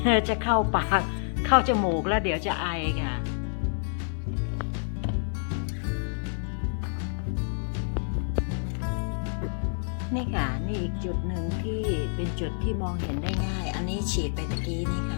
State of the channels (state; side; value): silent; right; 57 dB below the other